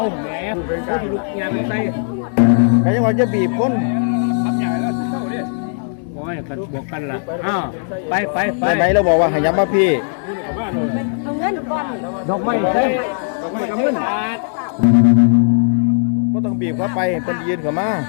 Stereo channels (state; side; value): silent; right; digital silence